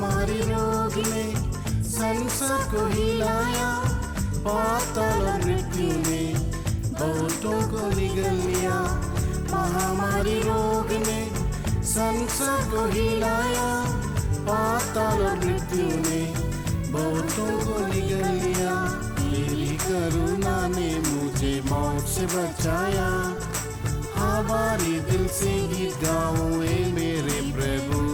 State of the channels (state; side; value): identical; both; correlation 1.00